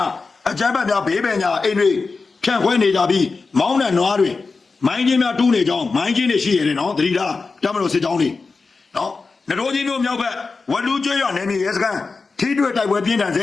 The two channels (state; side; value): quieter; right; 4.3 dB